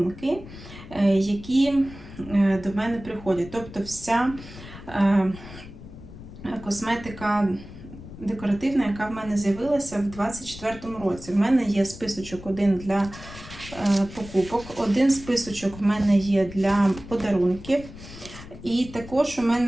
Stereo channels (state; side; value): noise; left; rumble, 15 dB below the sound